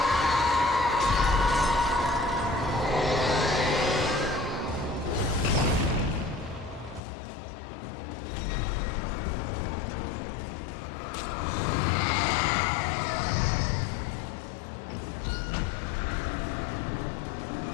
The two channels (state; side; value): drops out; right; at 7.0 s